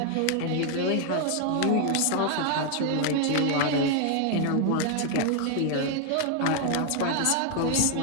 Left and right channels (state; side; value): different; both; correlation 0.00